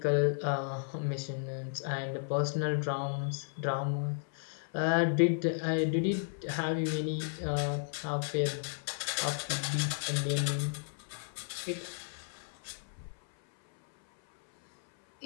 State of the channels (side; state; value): right; silent; 55 dB below the other